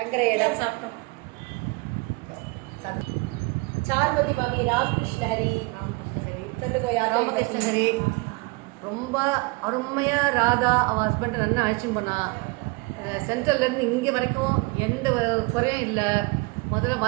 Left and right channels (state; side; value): quieter; left; 26.5 dB